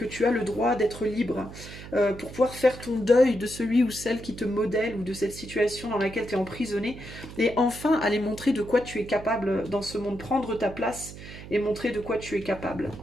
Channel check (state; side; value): noise; right; hum, 14 dB below the sound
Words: tu as le droit d'être libre, pour pouvoir faire ton deuil de celui ou celle qui te modèle ou de cette situation dans laquelle tu es emprisonné et enfin aller montrer de quoi tu es capable dans ce monde, prendre ta place et montrer de quoi tu es capable.